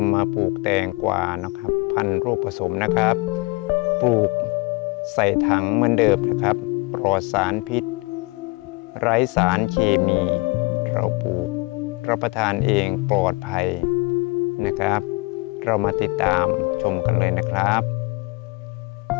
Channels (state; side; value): quieter; right; 26.7 dB